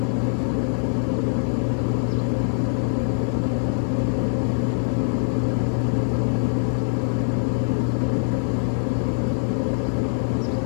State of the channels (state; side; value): silent; right; 63 dB below the other